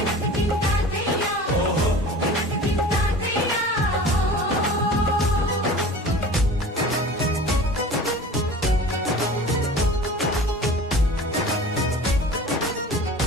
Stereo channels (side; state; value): both; normal; correlation 0.39